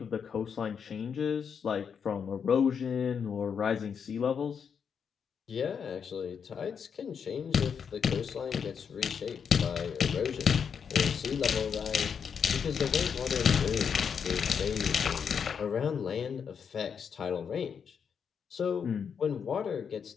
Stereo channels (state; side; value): quieter; right; 6.9 dB